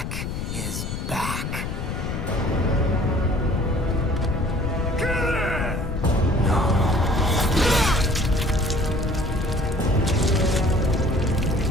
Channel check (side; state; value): left; noise; rumble, 4 dB below the sound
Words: is back. Killer!